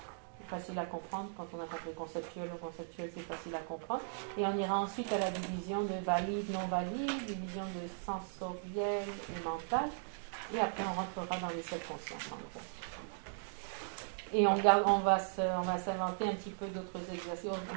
facile à comprendre. Quand on a compris conceptuel ou conceptuel, c'est facile à comprendre. Et on ira ensuite à la division de valide, non valide, division de sensoriel et mental. Et après, on rentrera dans les 7 consciences, en gros. Et on va s'inventer un petit peu d'autres exercices. On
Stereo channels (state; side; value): silent; left; digital silence